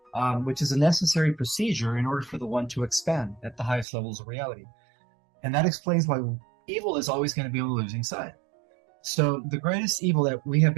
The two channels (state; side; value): drops out; left; at 3.9 s